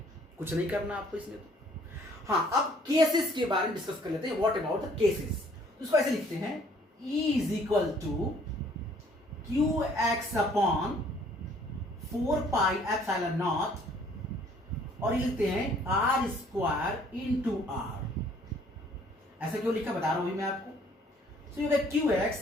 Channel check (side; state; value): both; normal; correlation 0.59